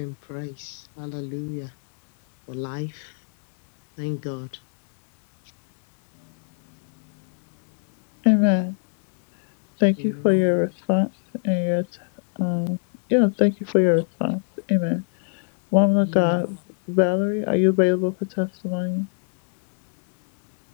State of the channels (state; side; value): silent; right; digital silence